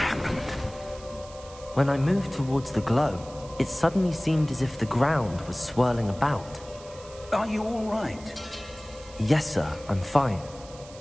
When I moved towards the glow, it suddenly seemed as if the ground was swirling about. Are you all right? Yes, sir, I'm fine.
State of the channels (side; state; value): right; noise; hiss, 20 dB below the sound